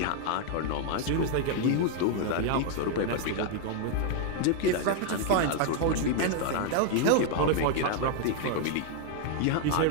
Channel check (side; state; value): both; different; correlation 0.00